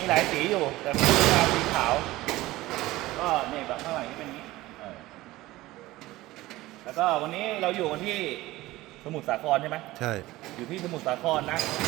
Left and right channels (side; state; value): left; quieter; 18.0 dB